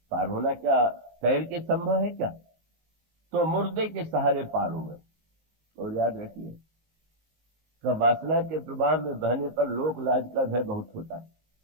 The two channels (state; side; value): late; left; 19 ms